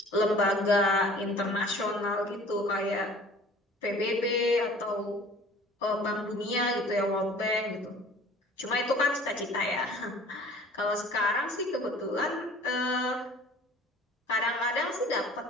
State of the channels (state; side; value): normal; both; correlation 0.48